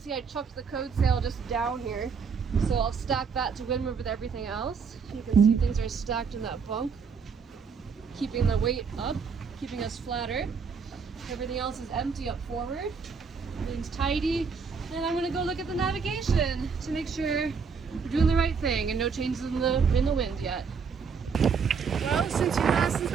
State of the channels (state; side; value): quieter; left; 5.8 dB